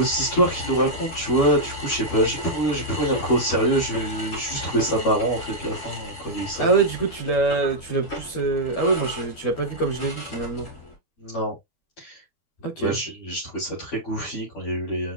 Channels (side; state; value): right; late; 12 ms